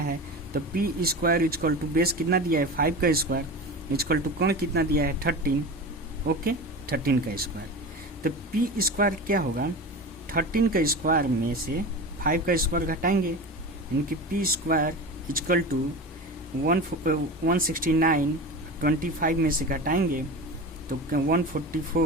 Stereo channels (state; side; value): normal; both; correlation 0.29